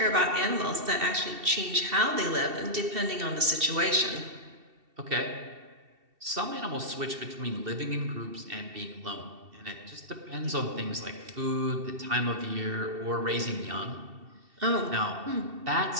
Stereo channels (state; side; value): late; left; 2.7 ms